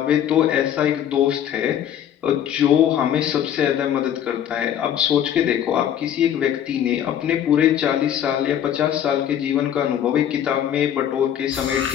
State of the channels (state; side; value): quieter; right; 10.0 dB